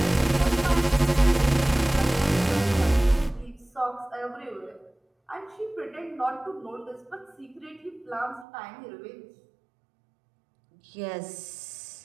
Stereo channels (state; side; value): drops out; left; at 8.5 s